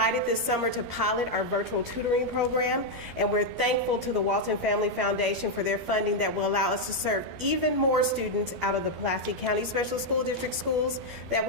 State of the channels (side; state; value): left; late; 12 ms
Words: this summer to pilot our virtual tutoring program, and we're thankful to the Walton Family Foundation for their funding that will allow us to serve even more students out of the Pulaski County Special School District schools that